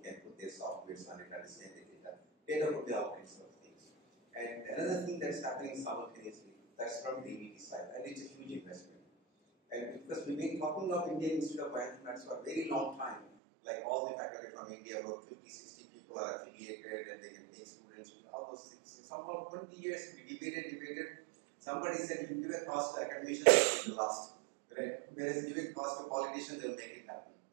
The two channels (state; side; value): drops out; left; at 13.2 s